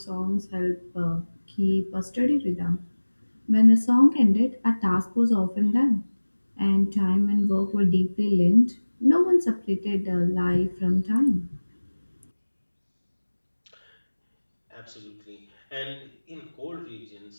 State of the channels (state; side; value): inverted; both; correlation -1.00